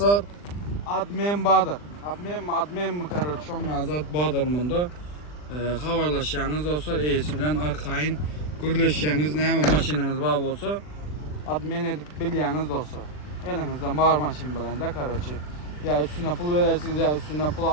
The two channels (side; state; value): right; late; 40 ms